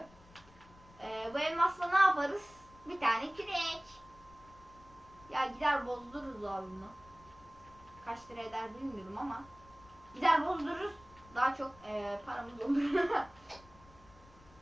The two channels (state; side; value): noise; left; rumble, 24 dB below the sound